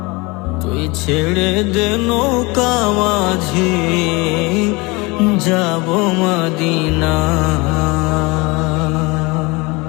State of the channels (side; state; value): right; quieter; 25.4 dB